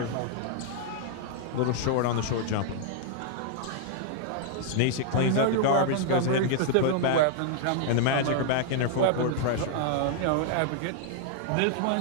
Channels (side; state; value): both; different; correlation -0.01